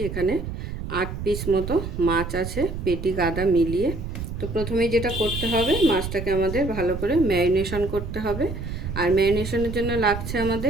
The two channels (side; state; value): right; noise; rumble, 6 dB below the sound